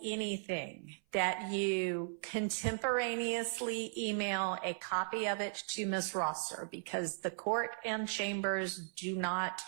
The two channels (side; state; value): left; silent; 53 dB below the other